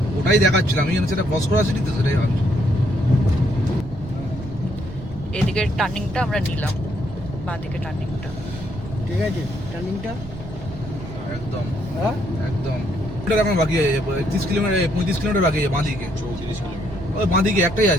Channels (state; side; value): noise; right; rumble, 13 dB below the sound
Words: ওটাই দেখাচ্ছিলাম। আমি সেটা ক্রস করা সিটি তো, সেটাই ভাবছি। এদিকের টার্নিংটা আমরা নিলাম, বাঁদিকে টার্নিংটা। ঠিক আছে টার্নিংটা একদম হ্যাঁ একদম। ওটা এখন বাকি আছে 30 কিলোমিটার 35 কিলোমিটার বাকি আছে বাঁদিকে। 34 কিলোমিটার। ওই বাঁদিকে একটাই